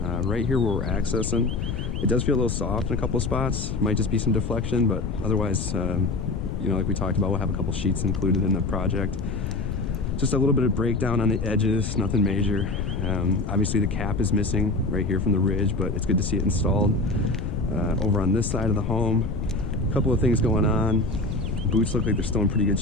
here where we're accessing, it does feel a little soft in a couple of spots. Might just be some deflection, but otherwise, like we talked about, we'll have a couple sheets included in the project. Just a little bit of breakdown on the edges, nothing major. Obviously the cap is missing right here from the ridge, but it's good to see it installed. Over on this side of the home, a couple of things going on. Boots look like they're still in pretty good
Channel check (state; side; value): noise; left; rumble, 3 dB below the sound